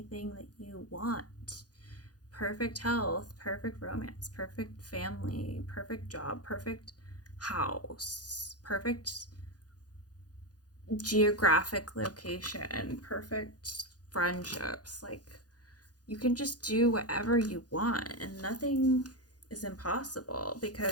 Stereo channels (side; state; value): right; late; 0.68 ms